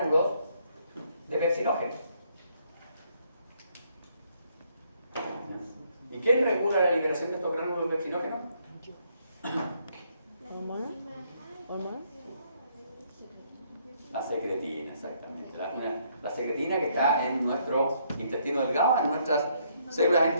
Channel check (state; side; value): inverted; both; correlation -0.70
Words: de pepsinógeno. ¿Y quién regula la liberación de estos gránulos de pepsinógeno? ¿Hormona? La secretina, exactamente. La secretina que está en nuestro intestino delgado, en nuestras células